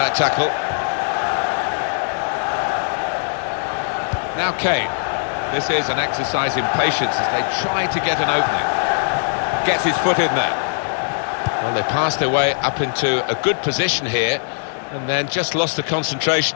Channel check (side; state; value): right; silent; 59 dB below the other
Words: tackle. Now Kane. This is an exercise in patience as they try to get an opening. Gets his foot in there. Well, they passed their way up into a good position here and then just lost the